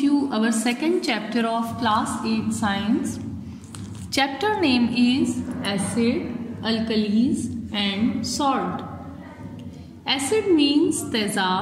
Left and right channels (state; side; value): identical; both; correlation 1.00